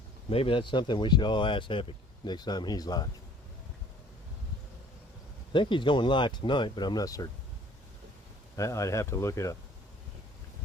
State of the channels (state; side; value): normal; both; correlation 0.54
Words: Maybe that's something we should all ask Epic next time he's live. I think he's going live tonight, but I'm not certain. I'd have to look it up.